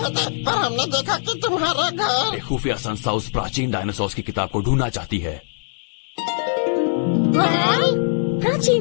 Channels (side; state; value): right; silent; digital silence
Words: थे, पर हमने देखा कि तुम्हारा घर। एक खुफिया संस्था उस प्राचीन डायनासोर की किताब को ढूंढना चाहती है।